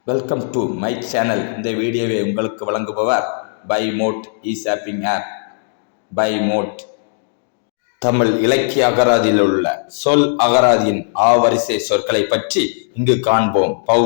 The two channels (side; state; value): right; silent; digital silence